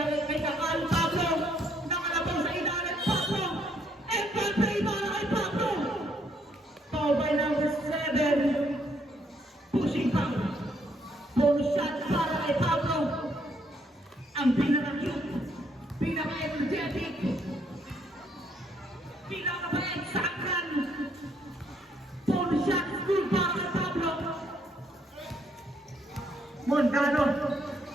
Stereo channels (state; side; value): normal; both; correlation 0.70